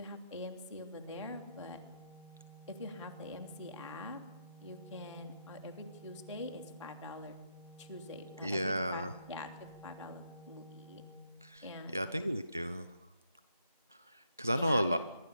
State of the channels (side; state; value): both; inverted; correlation -0.79